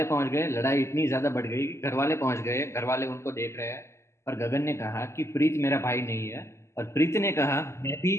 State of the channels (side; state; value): right; late; 0.13 ms